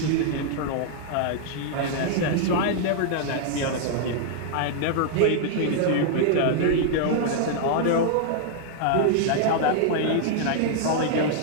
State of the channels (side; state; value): both; different; correlation -0.01